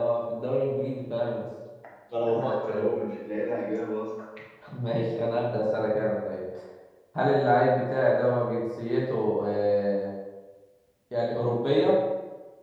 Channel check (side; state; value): both; identical; correlation 1.00